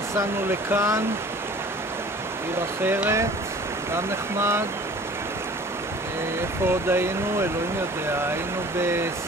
לכאן, עיר אחרת, גם נחמד. איפה עוד היינו? אלוהים יודע. היינו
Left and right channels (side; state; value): both; normal; correlation 0.46